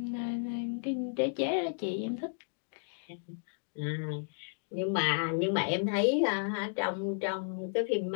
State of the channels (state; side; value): silent; right; digital silence